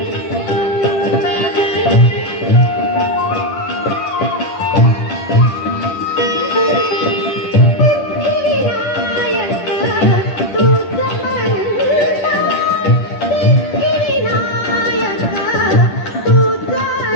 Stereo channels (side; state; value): right; late; 10 ms